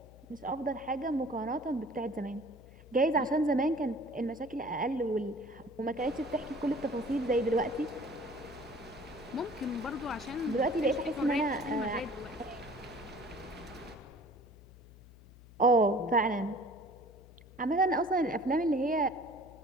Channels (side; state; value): left; noise; hum, 21 dB below the sound